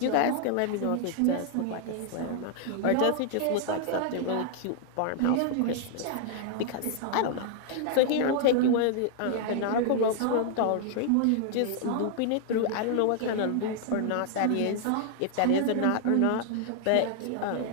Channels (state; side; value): different; both; correlation 0.00